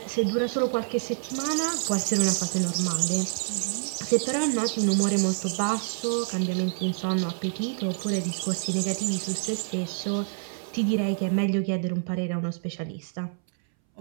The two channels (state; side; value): silent; left; 60 dB below the other